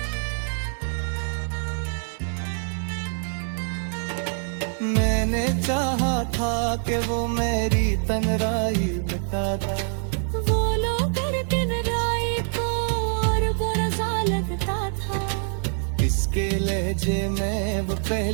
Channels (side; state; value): left; silent; 62 dB below the other